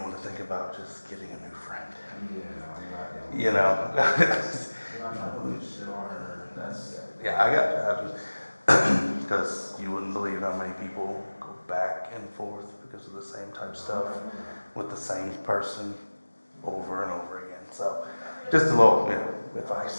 to think about just getting a new friend. Yeah, I'm not Yeah, I got because you wouldn't believe how many people go back and forth because of the same type of stuff with the same person over and over again. So just a little,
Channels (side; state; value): both; inverted; correlation -1.00